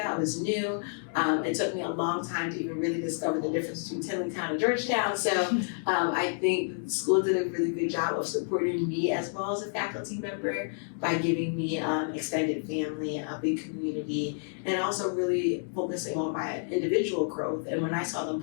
I was new. It took me a long time to even really discover the difference between Tillingham and Georgetown. So I think the school did a really good job of supporting me as well as a faculty member by giving me extended family, a big community, and also really focusing on my individual growth. And when I saw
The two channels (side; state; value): right; silent; 58 dB below the other